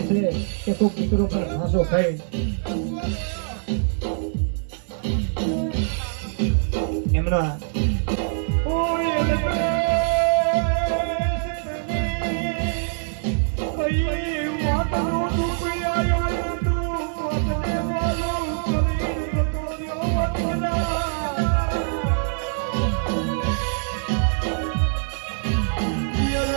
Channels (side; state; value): left; silent; digital silence